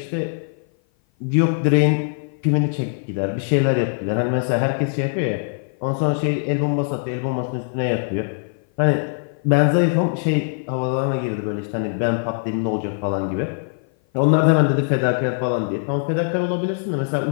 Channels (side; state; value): right; silent; 56 dB below the other